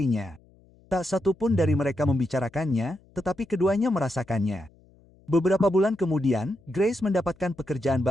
Tak satu pun dari mereka membicarakannya, tetapi keduanya merasakannya. Beberapa bulan kemudian, Grace mendapatkan pekerjaan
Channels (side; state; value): left; noise; hum, 29 dB below the sound